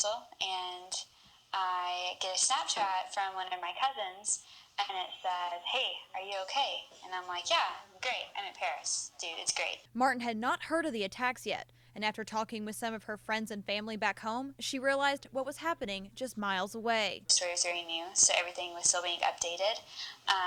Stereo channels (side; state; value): both; identical; correlation 1.00